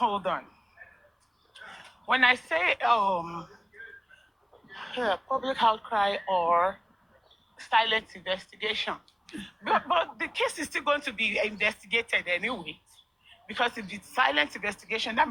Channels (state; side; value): identical; both; correlation 1.00